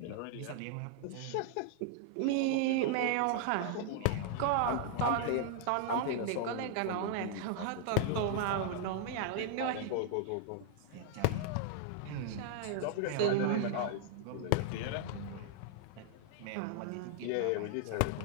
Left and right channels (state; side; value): different; both; correlation 0.00